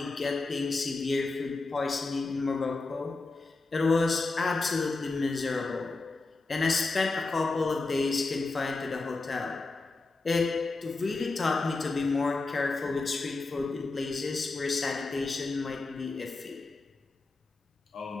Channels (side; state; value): right; quieter; 3.6 dB